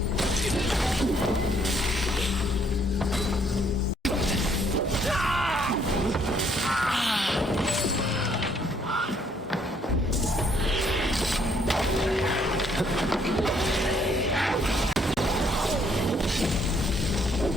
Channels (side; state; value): both; normal; correlation 0.67